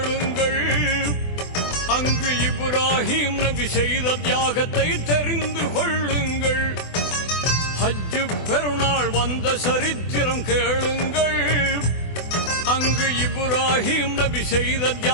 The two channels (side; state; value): right; late; 24 ms